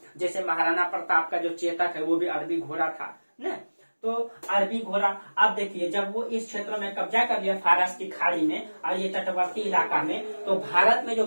जैसे महाराणा प्रताप का जो चेतक है वो भी अरबी घोड़ा था न, तो अरबी घोड़ा। अब देखिए जब वो इस क्षेत्र में कब्जा कर लिया फारस की खाड़ी में और ये तटवर्ती इलाका में, तो भारत में जो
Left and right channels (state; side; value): inverted; both; correlation -1.00